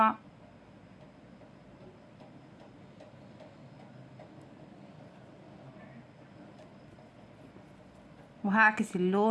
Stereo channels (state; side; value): identical; both; correlation 1.00